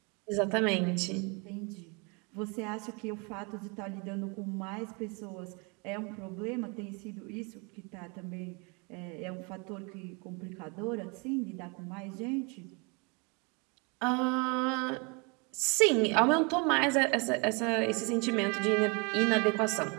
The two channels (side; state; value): left; quieter; 31.6 dB